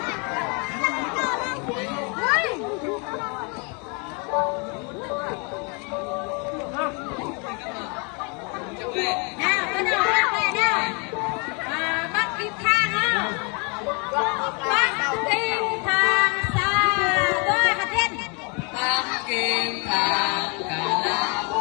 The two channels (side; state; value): right; quieter; 33.8 dB